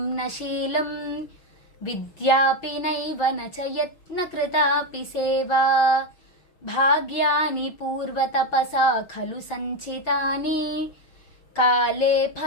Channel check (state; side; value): late; right; 6.2 ms